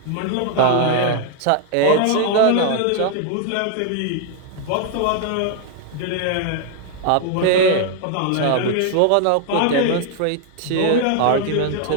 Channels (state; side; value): different; both; correlation 0.00